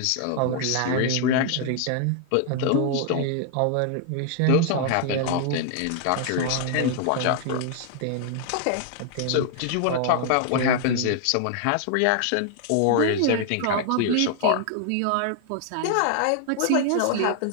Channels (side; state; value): both; different; correlation 0.00